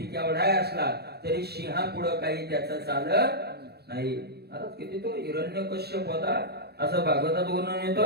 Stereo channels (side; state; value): left; late; 0.47 ms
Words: केवढा असला तरी सिंहा पुढे काही त्याचं चालत नाही. महाराज किती तो हिरण्यकश्यप होता असं भागवतात वर्णन